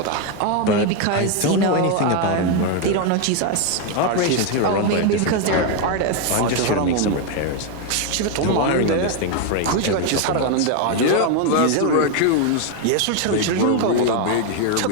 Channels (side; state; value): both; different; correlation 0.01